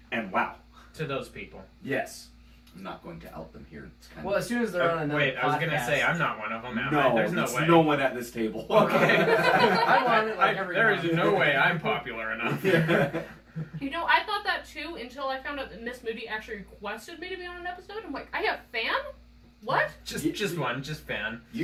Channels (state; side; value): identical; both; correlation 1.00